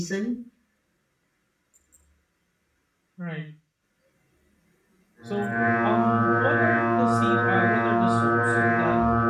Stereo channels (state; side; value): identical; both; correlation 1.00